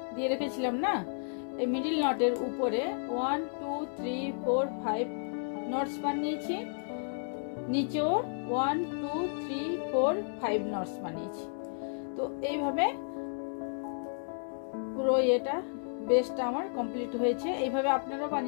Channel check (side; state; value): right; silent; digital silence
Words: দিয়ে রেখেছিলাম না, এই মিডল নটের উপরে 1 2 3 4 5 নটস বানিয়েছি, নিচেও 1 2 3 4 5 নটস বানিয়েছি। তো এইভাবে পুরো এটা বেসটা আমার কমপ্লিট হয়েছে। এইভাবে আপনারাও